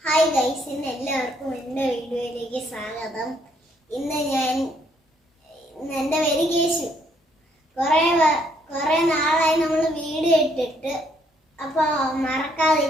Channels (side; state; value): both; normal; correlation 0.69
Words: Hi guys, ഇന്ന് എല്ലാവർക്കും എൻ്റെ വീഡിയോയിലേക്ക് സ്വാഗതം. ഇന്ന് എൻ്റെ പേര് കേശു. കുറേ നാളായി നമ്മൾ വീഡിയോ ഇട്ടിട്ട്, അപ്പോൾ